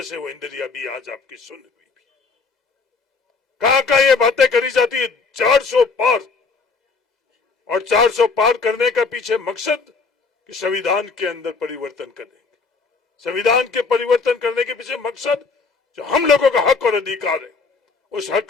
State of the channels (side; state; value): right; quieter; 4.5 dB